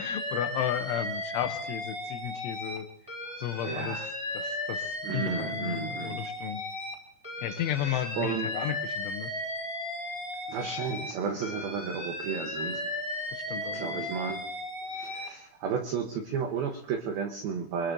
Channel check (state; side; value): normal; both; correlation -0.01